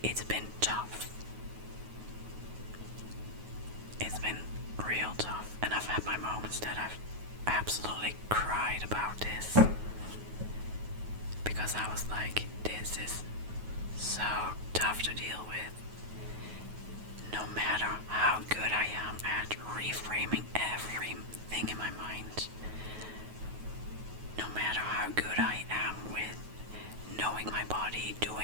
It's been tough. It's been real tough, and I've had my moments that I've absolutely cried about this, because I was like, this is so tough to deal with. No matter how good I am at reframing everything in my mind, no matter how good I am with knowing my body,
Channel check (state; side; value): late; left; 9.4 ms